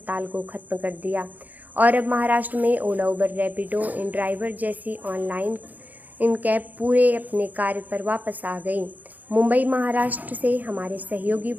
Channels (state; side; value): late; left; 0.081 ms